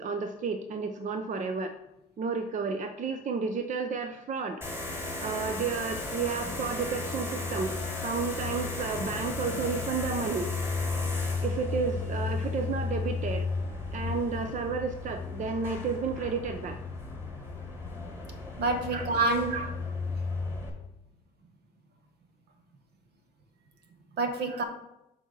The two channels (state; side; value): normal; both; correlation 0.29